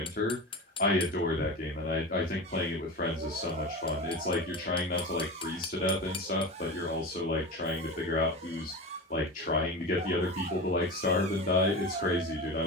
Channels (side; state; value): both; normal; correlation 0.27